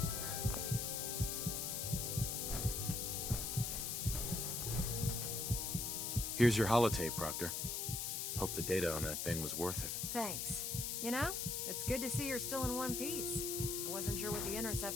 Here's your holotape, Proctor. Hope the data on that thing was worth it. Thanks. You know, it's good to see you're still in one piece. I wasn't sure what the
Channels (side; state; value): left; noise; hiss, 1 dB below the sound